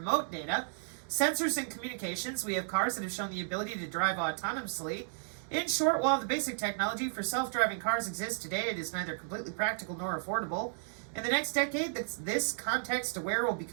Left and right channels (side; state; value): left; silent; digital silence